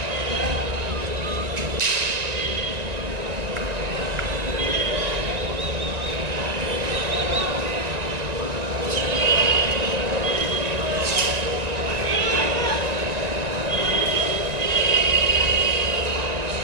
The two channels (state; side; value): late; left; 1.9 ms